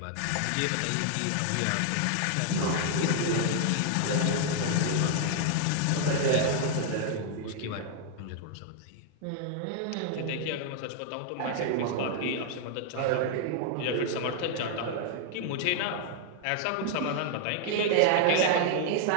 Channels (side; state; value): both; different; correlation 0.00